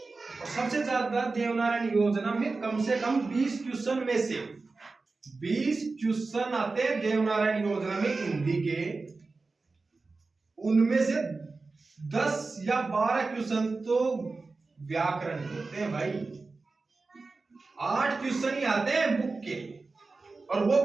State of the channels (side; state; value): left; quieter; 3.8 dB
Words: सबसे ज्यादा देवनारायण योजना में कम से कम 20 क्वेश्चन में से 20 क्वेश्चन आते हैं देवनारायण योजना में हिंदी के। उनमें से 10 या 12 क्वेश्चन तो व्याकरण के होते हैं भाई। 8 क्वेश्चन ही आते हैं बुक के, और वो